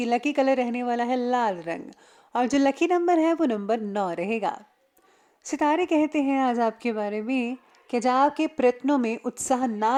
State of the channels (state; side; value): identical; both; correlation 1.00